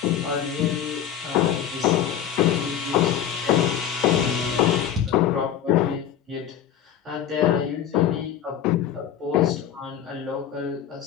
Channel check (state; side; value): quieter; right; 9.8 dB